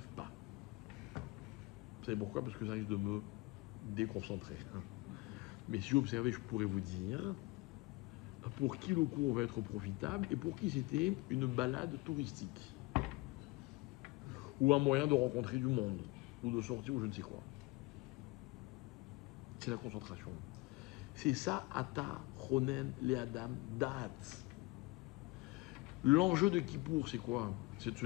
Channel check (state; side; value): quieter; right; 23.3 dB